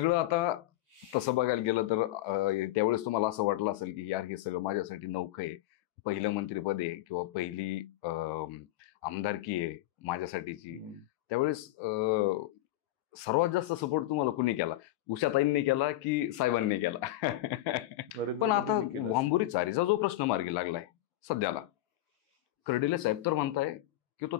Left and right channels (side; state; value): right; quieter; 15.2 dB